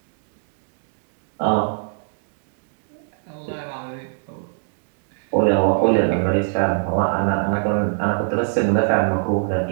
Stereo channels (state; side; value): silent; left; digital silence